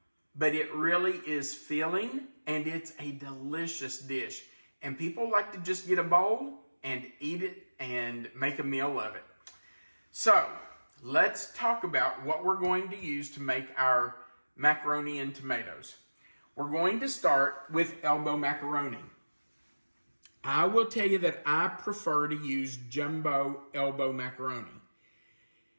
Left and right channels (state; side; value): inverted; both; correlation -1.00